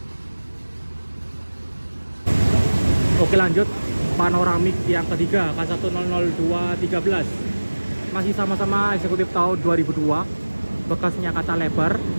Oke, lanjut panoramik yang ketiga, K100213. Masih sama-sama eksekutif tahun 2002. Bekasnya kaca lebar.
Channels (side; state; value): both; inverted; correlation -1.00